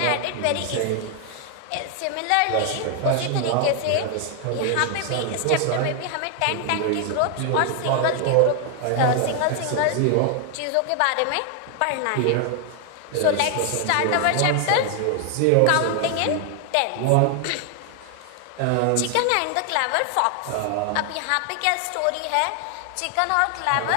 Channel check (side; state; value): both; different; correlation 0.00